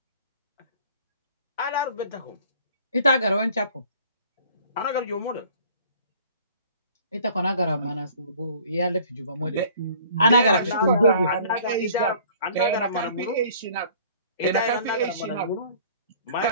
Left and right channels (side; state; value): both; inverted; correlation -0.52